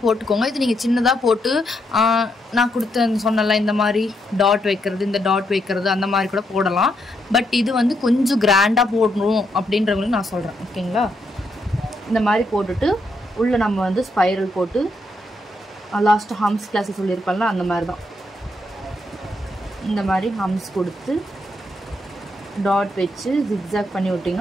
போட்டுக்கோங்க. இது நீங்கள் சின்னதாக போட்டு நான் சொன்னல இந்த மாதிரி டாட் வைக்கிறது, இந்த டாட் வைக்கிறது அந்த மாதிரி கூட போடலாம். பட் இது வந்து கொஞ்சம் கிராண்டாக போடணும் அப்படின்றவங்களுக்கு நான் சொல்கிறேன். ஓகேங்களா? இந்த மாதிரி போட்டுட்டு உள்ளே நம்ம வந்து ஸ்பைரல் போட்டு லாஸ்ட்டு ஹம்ஸ் கிளாஸ் சொல்லியிருப்பேன்ல அந்த மாதிரி தான் இந்த மாதிரி ஹம்ஸ் கொடுத்து டாட் வச்சு ஜிக்ஸாக் பண்ணி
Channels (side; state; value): both; normal; correlation 0.78